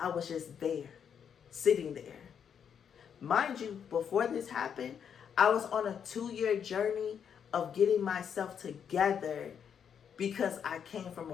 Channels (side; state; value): right; quieter; 7.8 dB